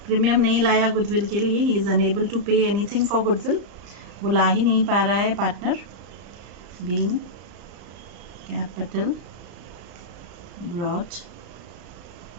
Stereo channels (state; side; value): late; left; 35 ms